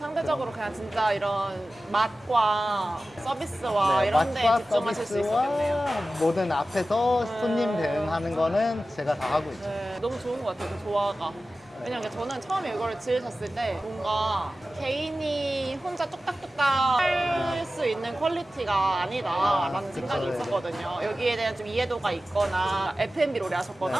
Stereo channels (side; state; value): both; normal; correlation 0.95